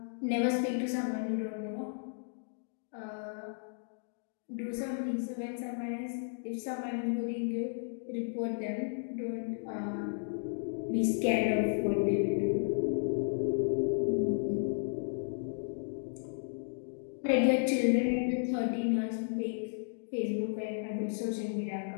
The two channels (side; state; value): right; silent; digital silence